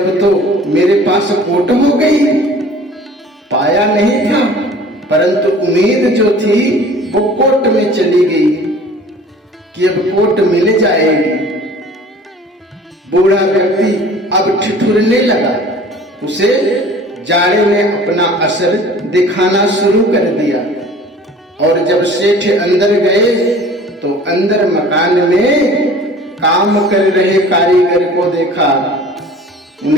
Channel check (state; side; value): normal; both; correlation 0.46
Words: तो मेरे पास कोट हो गई। पाया नहीं था, परंतु उम्मीद जो थी वो कोट में चली गई कि अब कोट मिल जाएगी। बूढ़ा व्यक्ति अब ठिठुरने लगा। उसे जाड़े ने अपना असर दिखाना शुरू कर दिया। और जब सेठ अंदर गए तो अंदर मकान में काम कर रहे कारीगर को देखा।